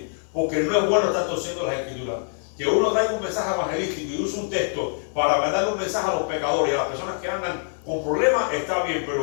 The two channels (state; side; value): silent; right; digital silence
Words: porque no es bueno estar torciendo las escrituras. Que uno traiga un mensaje evangelístico y use un texto para mandarle un mensaje a los pecadores y a las personas que andan con problemas, está bien,